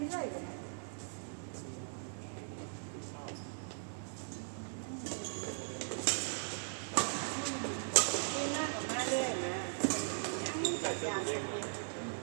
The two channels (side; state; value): left; silent; digital silence